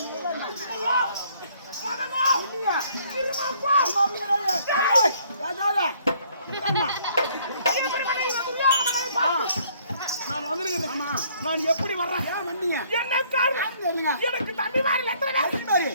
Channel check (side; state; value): both; inverted; correlation -0.63